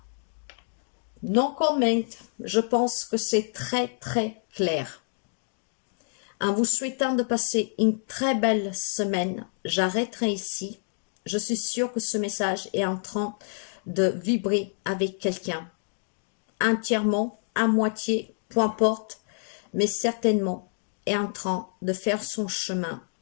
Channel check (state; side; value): silent; right; 60 dB below the other